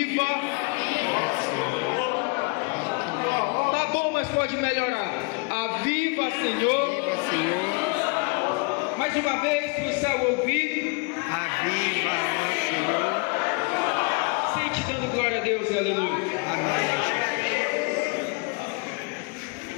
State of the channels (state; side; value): quieter; right; 32.2 dB